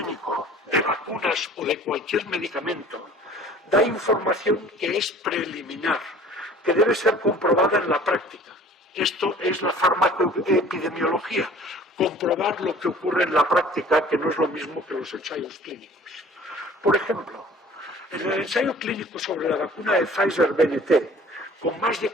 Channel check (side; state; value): both; normal; correlation 0.48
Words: de vacunas o de cualquier medicamento da información que es preliminar, que debe ser comprobada en la práctica. Esto es la farmacoepidemiología, comprobar lo que ocurre en la práctica, que no es lo mismo que los ensayos clínicos. Por ejemplo, en el ensayo clínico sobre la vacuna de Pfizer-BNT, con más de